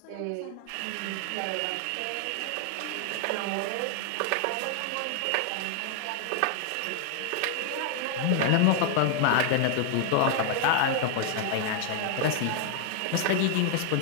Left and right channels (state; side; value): different; both; correlation 0.00